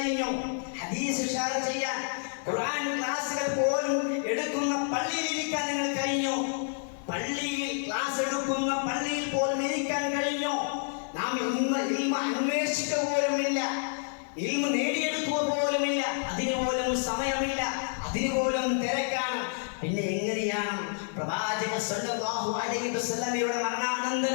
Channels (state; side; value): silent; right; 58 dB below the other